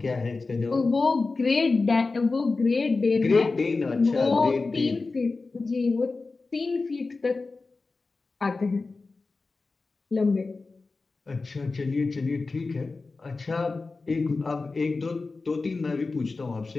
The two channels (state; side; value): quieter; right; 3.8 dB